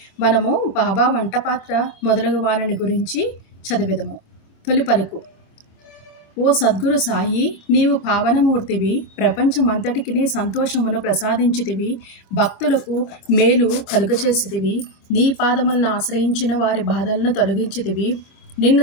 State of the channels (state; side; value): late; right; 26 ms